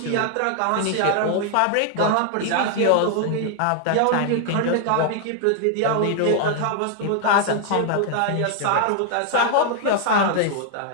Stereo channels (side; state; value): both; different; correlation 0.00